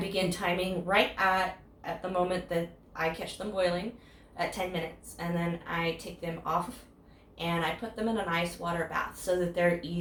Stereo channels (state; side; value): identical; both; correlation 1.00